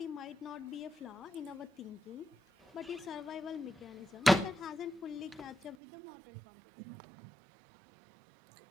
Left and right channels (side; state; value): left; drops out; at 5.8 s